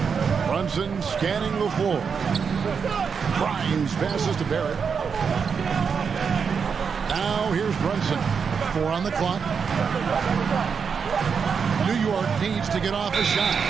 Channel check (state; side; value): quieter; left; 6.2 dB